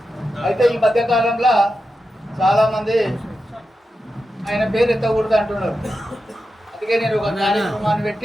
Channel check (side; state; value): both; normal; correlation 0.90